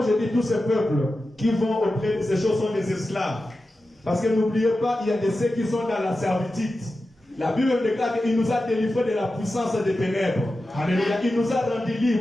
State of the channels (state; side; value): normal; both; correlation 0.92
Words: je dis tous ces peuples qui vont auprès de ces choses sont des esclaves. Parce que n'oubliez pas, il y a des ceux qui sont dans la servitude. La Bible déclare qu'il nous a délivrés de la puissance des ténèbres. Alléluia. Il nous a rendus